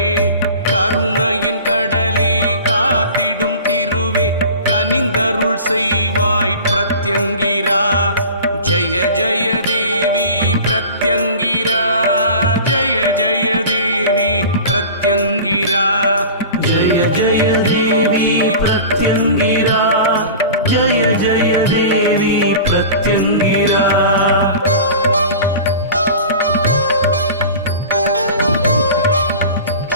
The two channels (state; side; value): inverted; both; correlation -0.37